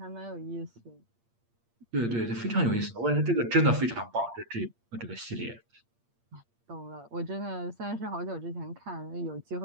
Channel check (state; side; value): late; left; 8.6 ms